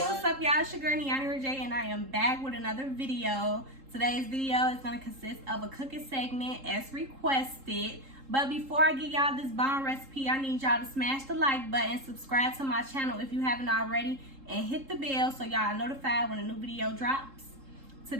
up, y'all? It's your girl Niani Rajay, and I am back with another video. Today's video is going to consist of a cooking segment as requested. But before I give y'all this bomb recipe, I need y'all to smash the like button, subscribe to my channel if you haven't already, and hit the bell so y'all are notified when a new video drops.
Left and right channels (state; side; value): late; left; 3.7 ms